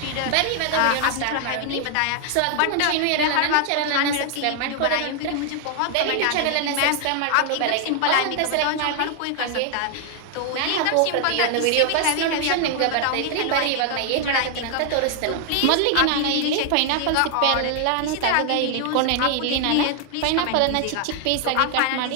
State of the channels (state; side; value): different; both; correlation 0.00